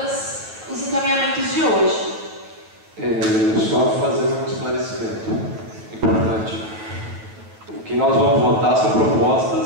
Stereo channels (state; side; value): late; left; 9.4 ms